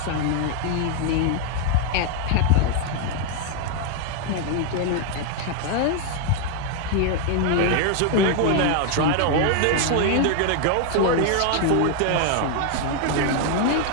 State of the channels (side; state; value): both; different; correlation 0.00